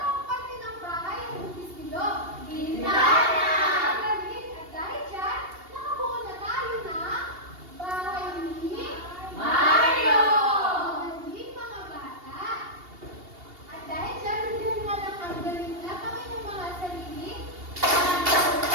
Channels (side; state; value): left; late; 2.8 ms